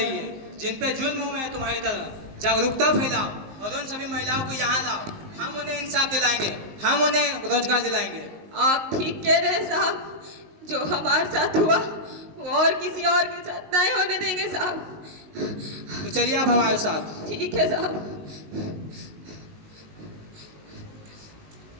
है, जिन पे जुल्म हुए हैं तुम्हारी तरह। जागरूकता फैलाओ और उन सभी महिलाओं को यहाँ लाओ। हम उन्हें इंसाफ दिलाएंगे, हम उन्हें रोजगार दिलाएंगे। आप ठीक कह रहे हैं साहब, जो हमारे साथ हुआ वो और किसी और के साथ नहीं होने देंगे साहब। तो चलिए आप हमारे साथ। ठीक है साहब।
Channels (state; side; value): late; left; 19 ms